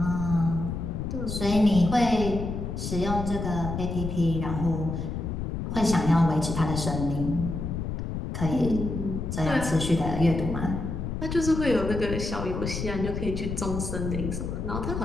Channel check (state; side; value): noise; left; rumble, 4 dB below the sound